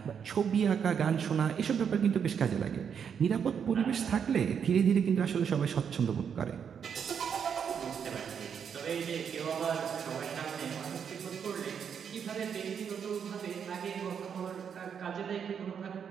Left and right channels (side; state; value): left; quieter; 7.4 dB